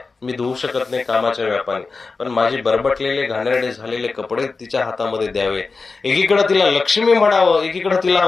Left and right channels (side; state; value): right; quieter; 4.2 dB